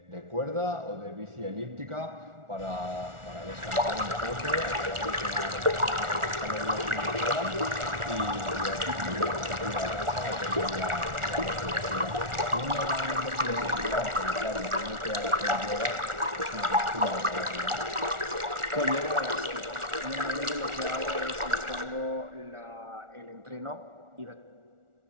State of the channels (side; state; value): left; late; 1.4 ms